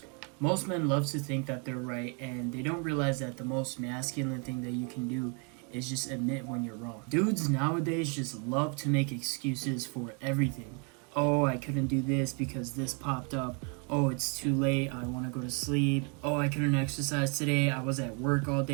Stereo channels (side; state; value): left; quieter; 36.3 dB